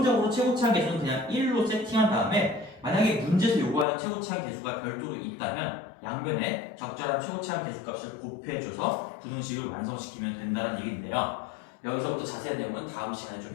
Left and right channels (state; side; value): drops out; right; at 3.9 s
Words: 최고차항 계수는 그냥 1로 세팅한 다음에 만약에 문제에서 요구하는 최고차항 계수가 별도로 있다면 양변에 적절한 최고차항 계수값을 곱해줘서 부등식을 완성시키면 된다는 얘기인데요. 여기서부터 자세한 내용은 다음 시간에